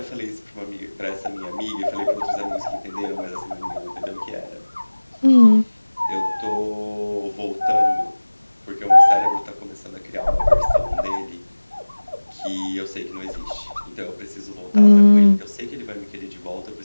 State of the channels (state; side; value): inverted; both; correlation -1.00